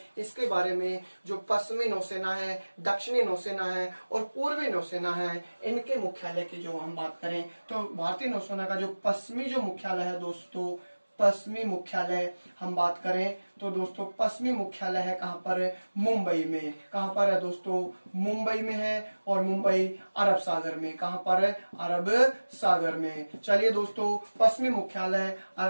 इसके बारे में, जो पश्चिमी नौसेना है, दक्षिणी नौसेना है और पूर्वी नौसेना है, इनके मुख्यालय की जो हम बात करें, तो भारतीय नौसेना का जो पश्चिमी जो मुख्यालय है दोस्तों, पश्चिमी मुख्यालय हम बात करें तो दोस्तों पश्चिमी मुख्यालय है कहाँ पर, मुंबई में। कहाँ पर है दोस्तों, मुंबई में है, और मुंबई अरब सागर में। कहाँ पर है, अरब सागर में। चलिए दोस्तों पश्चिमी मुख्यालय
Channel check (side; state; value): both; inverted; correlation -1.00